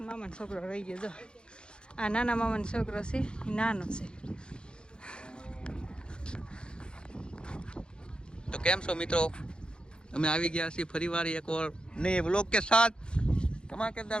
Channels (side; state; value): right; late; 0.051 ms